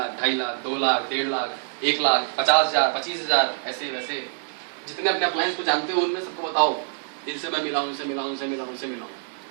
2.5 लाख 2 लाख 1.5 लाख 1 लाख 50,000 25,000 ऐसे वैसे, जितने अपने अप्लायंस को जानते हो उनमें सबको बताओ, इनसे मैं मिला हूँ, इनसे मिला हूँ, इनसे मिला हूँ, इनसे मिला हूँ,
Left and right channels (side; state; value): left; silent; digital silence